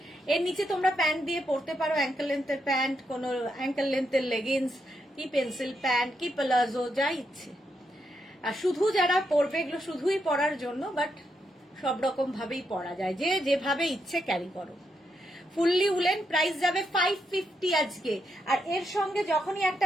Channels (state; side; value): normal; both; correlation 0.81